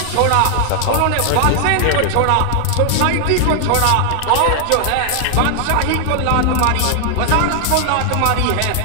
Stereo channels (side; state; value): both; different; correlation 0.00